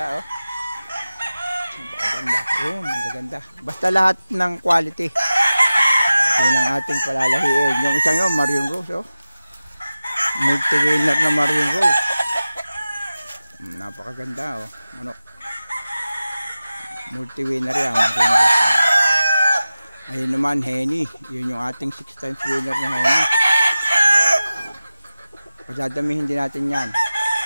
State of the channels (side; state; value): both; inverted; correlation -0.95